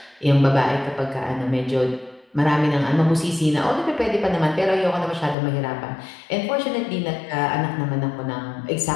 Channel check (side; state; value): right; drops out; at 5.4 s